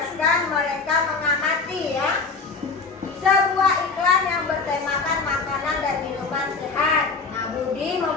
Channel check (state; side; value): quieter; right; 4.5 dB